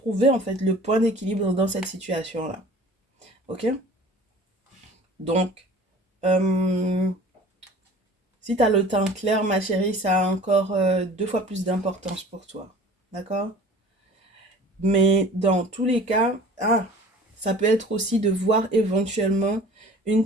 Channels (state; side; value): normal; both; correlation 0.45